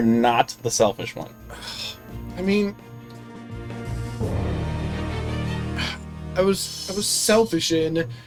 not the selfish one. I mean, I was selfish in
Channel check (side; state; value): both; identical; correlation 1.00